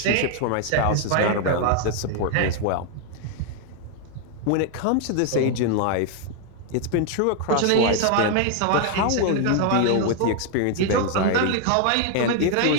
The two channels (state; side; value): different; both; correlation 0.01